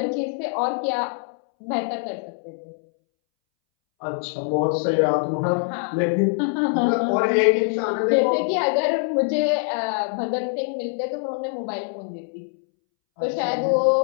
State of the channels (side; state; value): right; silent; 63 dB below the other